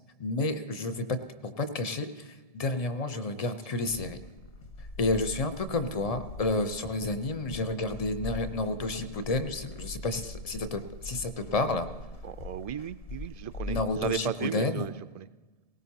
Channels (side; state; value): right; late; 1.7 ms